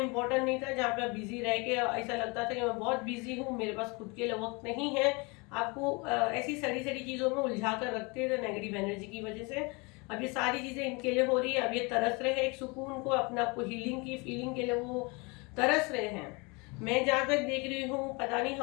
नहीं था, जहाँ पे आप बिजी रह के ऐसा लगता था कि मैं बहुत बिजी हूँ, मेरे पास खुद के लिए वक्त नहीं है। आपको ऐसी सड़ी सड़ी चीजों में उलझा कर रखते थे नेगेटिव एनर्जी की वजह से। अब ये सारी चीजें इनके लिए हो रही है। अब ये तरस रहे हैं एक सुकून को, अपने आप को हीलिंग की फीलिंग के लिए वो तरस रहे हैं। मैं जहां तक देख रही हूँ, पता नहीं,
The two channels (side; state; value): right; quieter; 28.4 dB